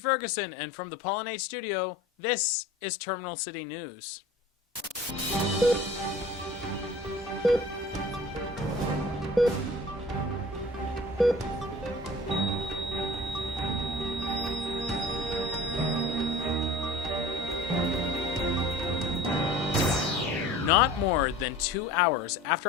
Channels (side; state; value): both; normal; correlation 0.43